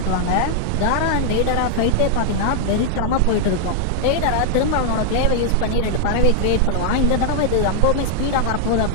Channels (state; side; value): different; both; correlation 0.00